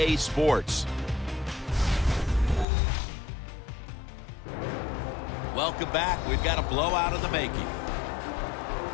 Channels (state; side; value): drops out; right; at 2.7 s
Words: Sports. Welcome back. We've got a blowout in the making.